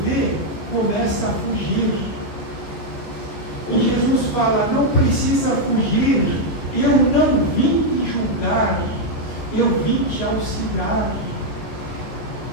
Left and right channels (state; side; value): late; right; 15 ms